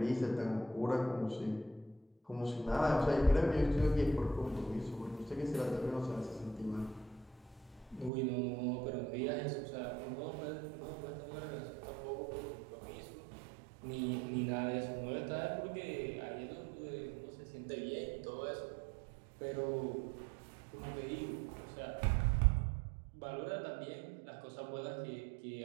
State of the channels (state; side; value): drops out; left; at 8.1 s